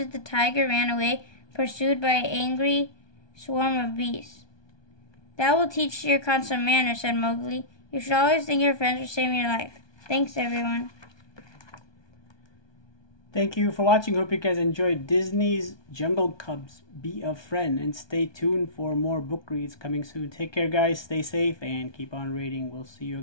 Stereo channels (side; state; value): right; late; 1.2 ms